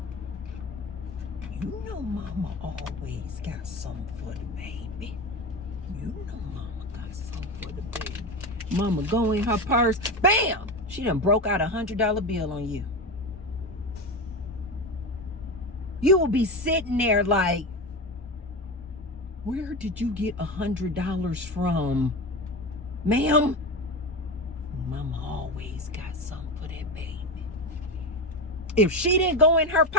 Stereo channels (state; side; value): normal; both; correlation 0.21